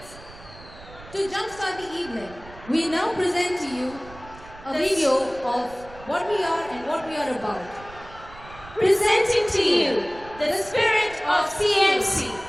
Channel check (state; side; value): noise; right; rumble, 19 dB below the sound